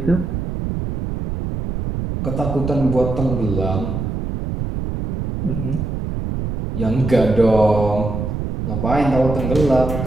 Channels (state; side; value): noise; right; rumble, 4 dB below the sound